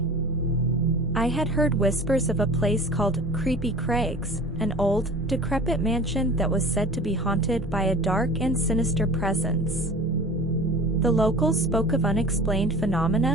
I had heard whispers of a place called Creepy Craigs, an old, decrepit mansion that was said to be haunted by a dark and sinister presence. The locals spoke of unexplained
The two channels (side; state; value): both; normal; correlation 0.40